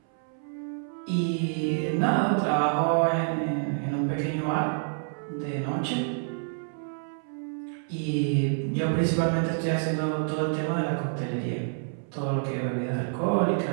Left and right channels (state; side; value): silent; left; 59 dB below the other